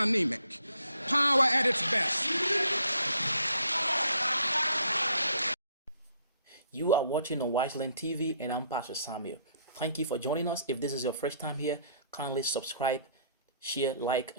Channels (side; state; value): both; inverted; correlation -0.65